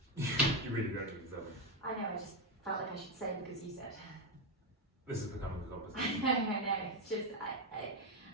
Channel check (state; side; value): normal; both; correlation 0.07